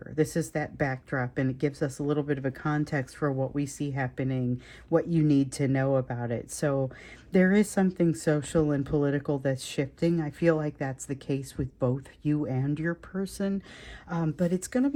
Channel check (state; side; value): identical; both; correlation 1.00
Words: This is that backdrop, and it gives us a little bit of a context for what we see happening, what you need to know about it. So there is something social and political that's shifting. I feel like that's the case with both you and your person, but it's going to